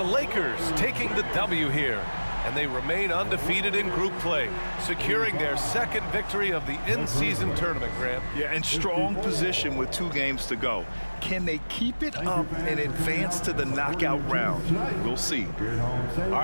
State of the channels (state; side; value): inverted; both; correlation -1.00